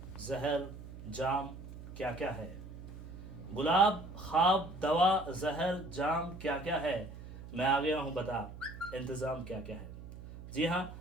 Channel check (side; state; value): right; noise; hum, 13 dB below the sound